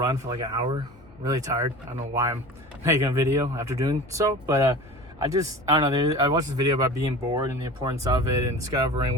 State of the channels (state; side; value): normal; both; correlation 0.36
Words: for like an hour. Really tired. I don't know why I'm making a video after doing so, but I don't know. I watched this video about being bored and the importance of it and discovering